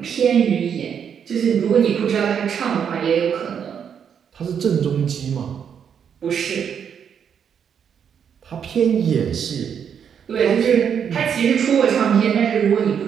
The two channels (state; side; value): quieter; left; 7.8 dB